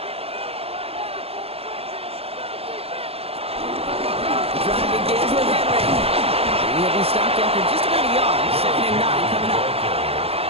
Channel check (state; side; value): late; left; 0.29 ms